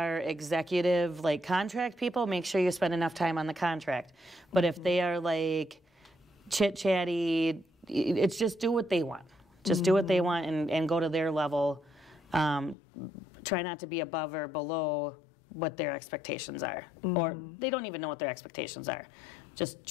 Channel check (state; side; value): drops out; right; at 12.8 s